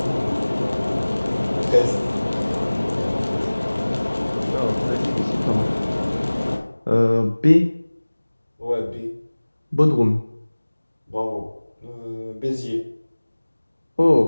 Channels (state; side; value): inverted; both; correlation -1.00